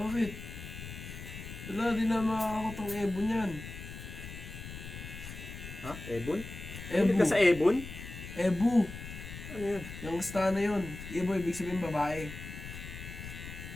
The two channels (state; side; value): noise; left; rumble, 11 dB below the sound